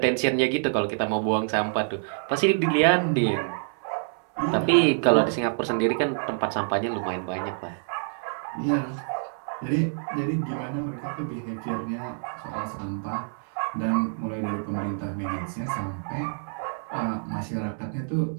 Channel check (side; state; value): left; silent; 60 dB below the other